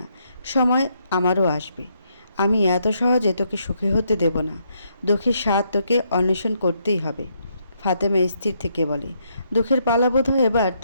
সময় আমারও আসবে। আমি এত সহজে তোকে সুখী হতে দেব না। দুঃখের স্বাদ তোকে অন্বেষণ করতেই হবে। ফাতেমা স্থির থেকে বলে, দুঃখের পালা বোধ হয় এবার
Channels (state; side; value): inverted; both; correlation -0.75